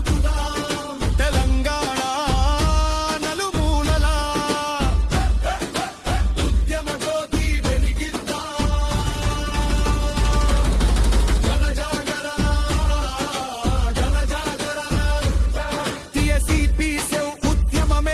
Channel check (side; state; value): both; identical; correlation 1.00